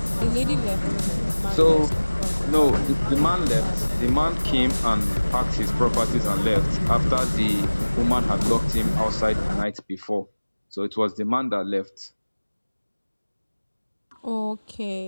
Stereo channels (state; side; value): inverted; both; correlation -1.00